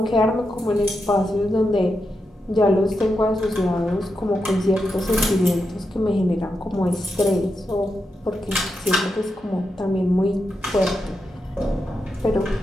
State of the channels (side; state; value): both; normal; correlation 0.87